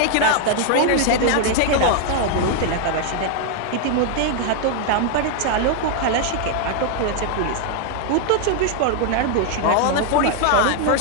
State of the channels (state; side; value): different; both; correlation 0.00